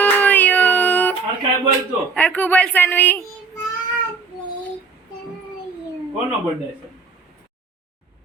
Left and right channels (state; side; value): quieter; left; 4.7 dB